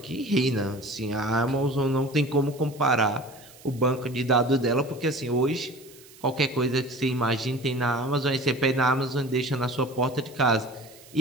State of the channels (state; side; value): noise; right; hiss, 22 dB below the sound